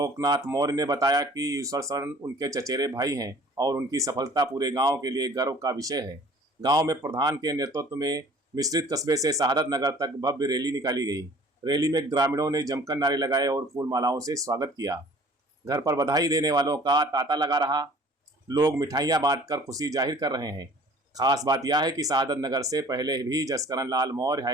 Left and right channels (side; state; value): both; normal; correlation 0.50